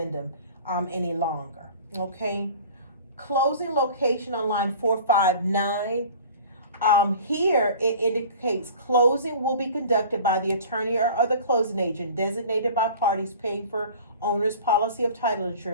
any longer. Okay. Closing location on line 459. Here it indicates closing will be conducted by the attorney or other closing agent designated by parties paying for owner's policy of title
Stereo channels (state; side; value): inverted; both; correlation -0.42